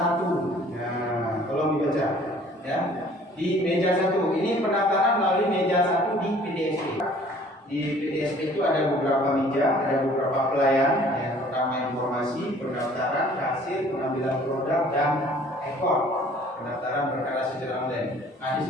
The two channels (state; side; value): normal; both; correlation 0.54